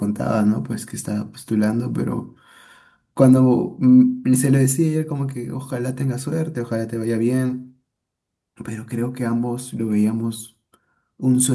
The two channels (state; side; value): identical; both; correlation 1.00